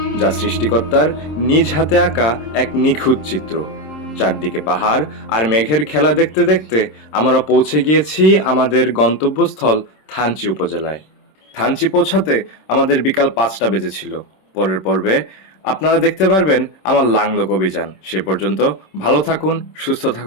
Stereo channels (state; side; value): late; right; 26 ms